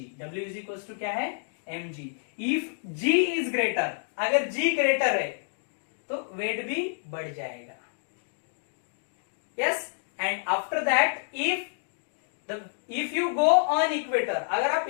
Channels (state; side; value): silent; right; digital silence